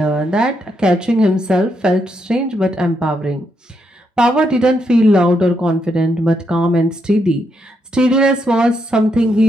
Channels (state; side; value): normal; both; correlation 0.79